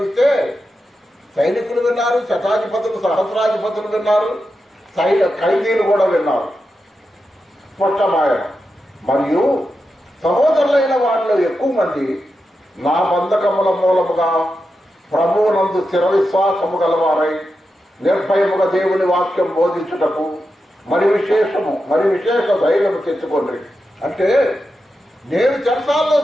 సైనికులు విన్నారు, శతాధిపతులు, సహస్రాధిపతులు విన్నారు, ఖైదీలు కూడా విన్నారు. స్పష్టమాయ. మరియు సహోదరులైన వాళ్ళలో ఎక్కువ మంది నా బంధకముల మూలముగా ప్రభువునందు స్థిర విశ్వాసము గలవారై నిర్భయముగా దేవుని వాక్యం బోధించుటకు మరి విశేష ధైర్యము తెచ్చుకోండి. అంటే నేను చెరసాల్లో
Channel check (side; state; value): both; normal; correlation 0.89